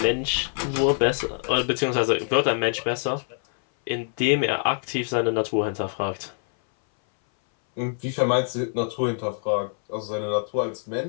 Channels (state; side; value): silent; right; 59 dB below the other